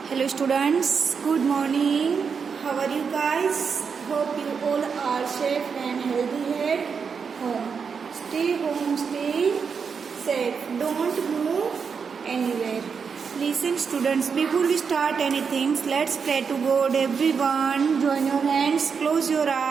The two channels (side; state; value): left; quieter; 6.0 dB